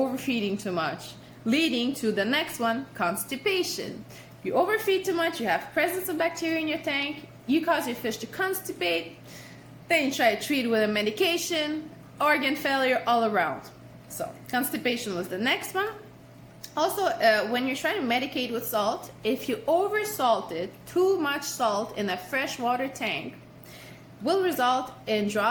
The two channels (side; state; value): both; identical; correlation 1.00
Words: too much, leading to the next one, constipation. You overfeed too much, you have presence of bacteria in your tank, you cause your fish to constipate, then you try to treat it with a medication, organ failure all around. So constipation was the next one. Also, when you're trying to medicate with salt, if you oversalted, too much salt in a freshwater tank will result in